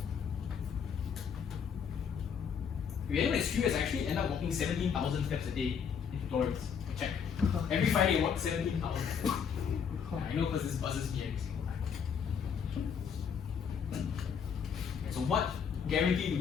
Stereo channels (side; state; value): right; quieter; 7.1 dB